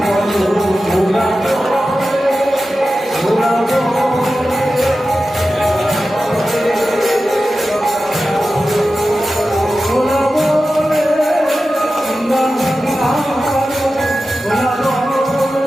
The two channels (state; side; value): normal; both; correlation 0.93